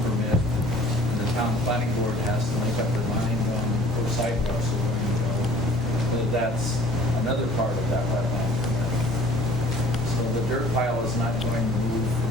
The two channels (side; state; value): both; normal; correlation 0.51